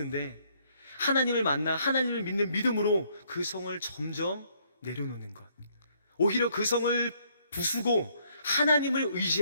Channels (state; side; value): inverted; both; correlation -0.68